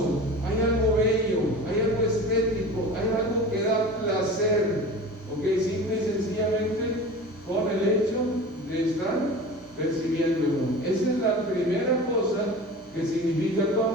hay algo bello, hay algo estético, hay algo que da placer, ¿ok? Simple y sencillamente con el hecho de estar percibiéndolo. Esa es la primera cosa que significa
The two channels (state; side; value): normal; both; correlation 0.35